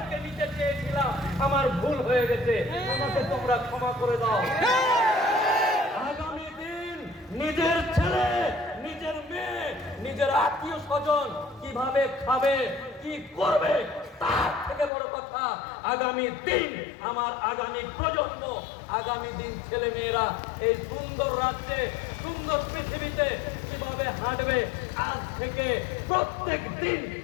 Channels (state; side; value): drops out; right; at 14.9 s